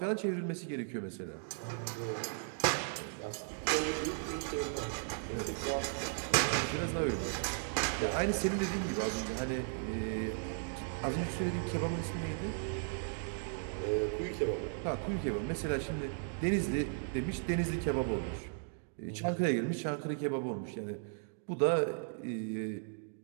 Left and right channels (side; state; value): left; silent; digital silence